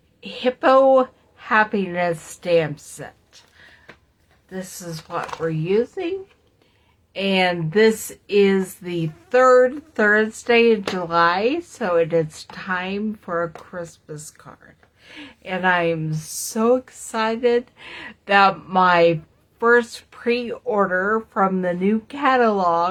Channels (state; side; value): identical; both; correlation 1.00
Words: Hippo Happiness stamp set. This is what we're using, and this is the third Thursday in July, so it is time for a Christmas card. And I'm so excited that my first pre-order from the new